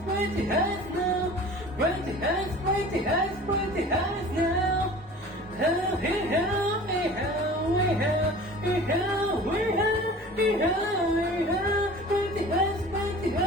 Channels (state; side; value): normal; both; correlation 0.42